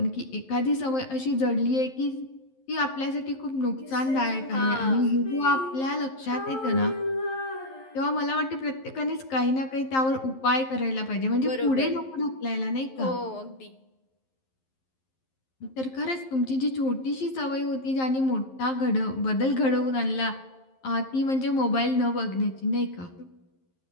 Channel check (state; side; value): late; right; 11 ms